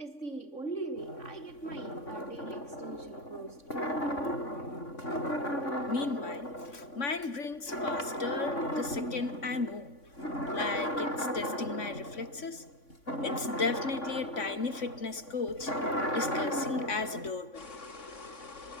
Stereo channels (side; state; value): right; late; 3.5 ms